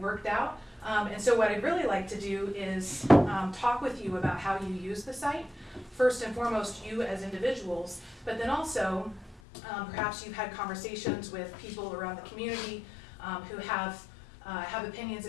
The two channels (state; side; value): drops out; right; at 9.4 s